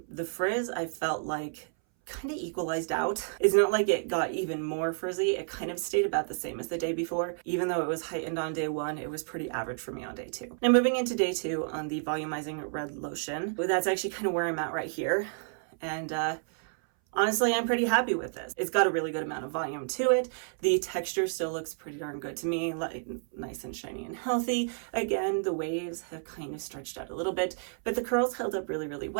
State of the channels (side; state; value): left; silent; 57 dB below the other